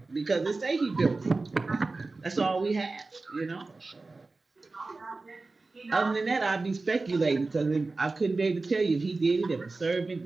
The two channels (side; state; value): left; quieter; 3.6 dB